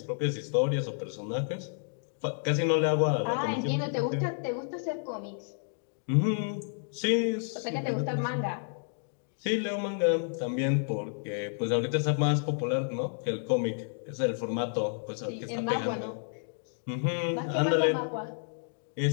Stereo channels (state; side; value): silent; right; digital silence